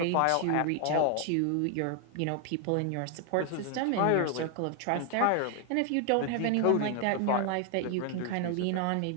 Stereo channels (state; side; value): different; both; correlation 0.00